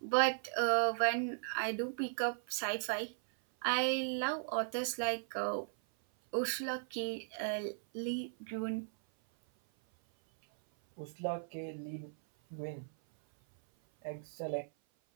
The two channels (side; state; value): left; silent; 53 dB below the other